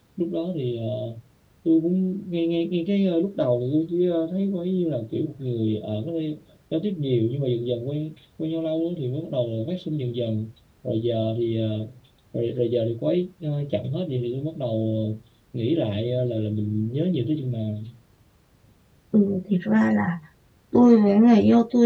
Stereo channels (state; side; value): identical; both; correlation 1.00